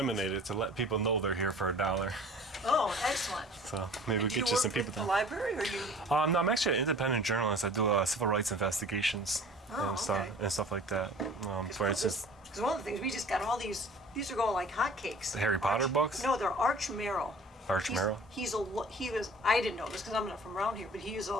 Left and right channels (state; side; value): normal; both; correlation 0.46